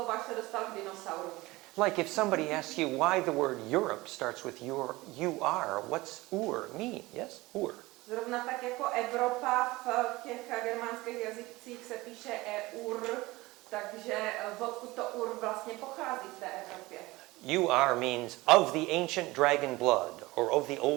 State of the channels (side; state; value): left; quieter; 20.6 dB